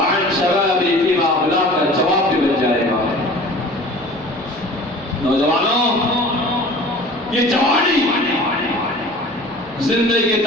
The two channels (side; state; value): both; normal; correlation 0.43